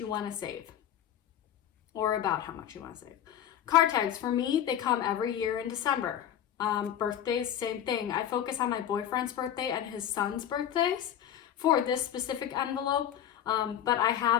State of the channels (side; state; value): right; quieter; 10.4 dB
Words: want to save or about how much you want to save. Car tags, for me, they come every year in December. Birthdays, same thing. I focus on my boyfriend's birthday and his son's birthdays for this specific envelope. But I